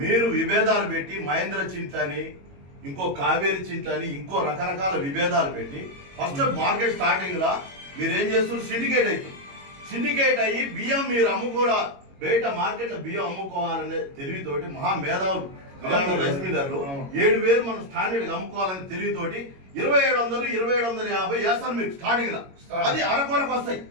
మీరు విభేదాలు పెట్టి మహేంద్ర చింతని ఇంకో కావేరి చింతని ఇంకో రకరకాల విభేదాలు పెట్టి ఫస్ట్ మార్కెట్ స్టార్టింగ్ లా మీరు ఏం చేస్తున్నారు సిండికేట్ అవుతుంది. సిండికేట్ అయ్యి బియ్యం మీరు అమ్ముకోరా బయట మార్కెట్ లో బియ్యం అమ్ముకోవాలనే తెలివితోటి మహా మేధావులు రైస్ మిల్లర్లు 7,000 మనం స్టాండర్డ్ గా అమ్ముకోవాలని తెలివితోటి 2,700 2,750 వేస్తారు మీకు స్టార్టింగ్ లా. అది అరకొరకు వస్తాయి.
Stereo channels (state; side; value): late; left; 22 ms